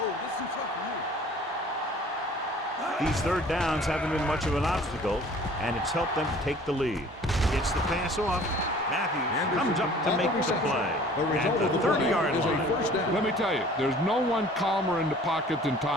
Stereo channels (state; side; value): normal; both; correlation 0.50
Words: Oh, this is tough for you. These 3rd downs haven't been much of an obstacle, and it's helped them to take the lead. Gets the pass off. Matthews comes up to make the play at the 30-yard line. Let me tell you, there's no one calmer in the pocket than